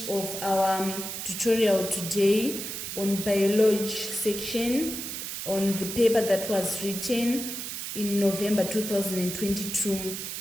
of our tutorial today on biology section on the paper that was written in November 2022.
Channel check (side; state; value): right; noise; hiss, 6 dB below the sound